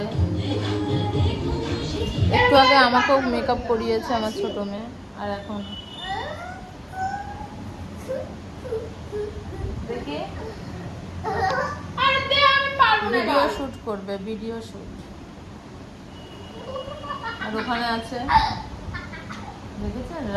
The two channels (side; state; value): both; identical; correlation 1.00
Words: একটু আগে আমাকেও মেকআপ করিয়েছে আমার ছোট মেয়ে। আর এখন দেখি ভিডিও শুট করবে, ভিডিও শুট। আর ওখানে আছে, দেখেছেন,